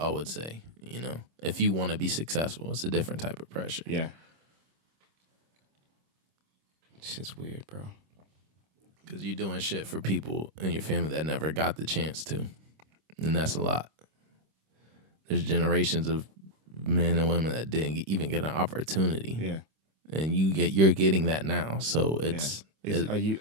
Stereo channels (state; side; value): late; left; 26 ms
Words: would say, you know. If you want to be successful, it's a different type of pressure. Because you're doing shit for people in your family that never got the chance to. And that's a lot. There's generations of men and women that didn't even get an opportunity. And you're getting that now. So